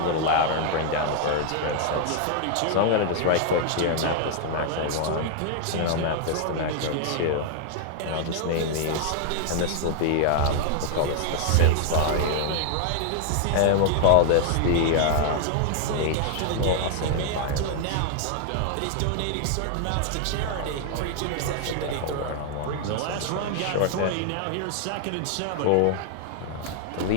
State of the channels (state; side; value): different; both; correlation 0.00